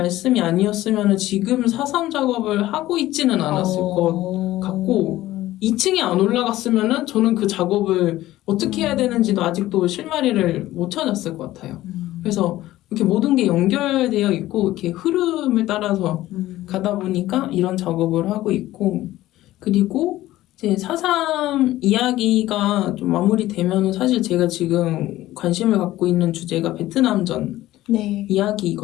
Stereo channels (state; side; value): quieter; right; 15.6 dB